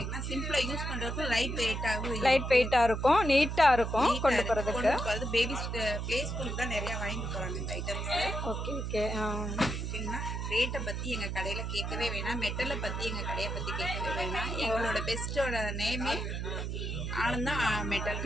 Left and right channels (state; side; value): noise; right; hum, 3 dB below the sound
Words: சிம்பிளாக யூஸ் பண்ணுறதுக்கு லைட் வெயிட்டாக இருக்கும், நீட்டாக இருக்கும் கொண்டு போகிறதுக்கு. பேபிஸ் ப்ளே ஸ்கூலுக்கு தான் நிறையா வாங்கிட்டு போகிறாங்க இந்த ஐட்டம்ஸு. Okay okay. ஓகேங்களா. ரேட்டை பற்றி எங்கள் கடையில் கேட்கவே வேணாம், மெட்டலை பற்றி எங்கள் கடையை பற்றி கேட்கவே வேணாம். எங்களோட பெஸ்ட்டோட நேமே ஆனந்தா மெட்டல்.